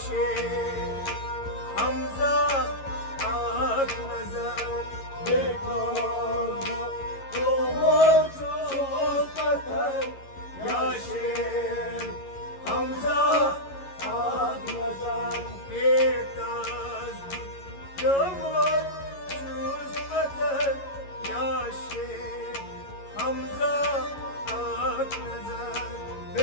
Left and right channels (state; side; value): late; right; 11 ms